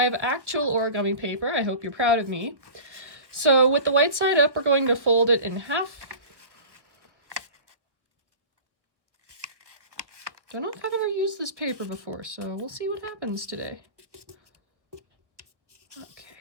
have actual origami paper. I hope you're proud of me. So with the white side up, we're going to fold it in half. Don't know if I've ever used this paper before, so we'll see what happens today. Okay,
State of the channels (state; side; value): late; left; 1.3 ms